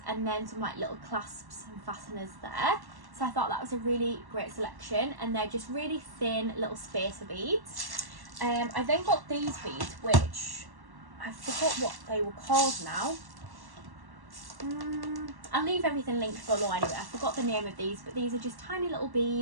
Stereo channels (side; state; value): left; late; 1.1 ms